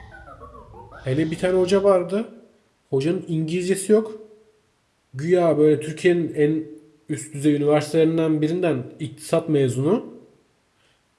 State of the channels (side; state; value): both; identical; correlation 1.00